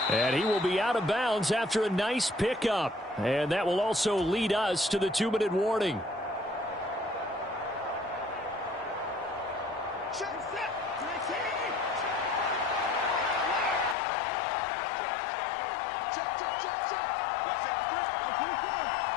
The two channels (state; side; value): drops out; right; at 14.0 s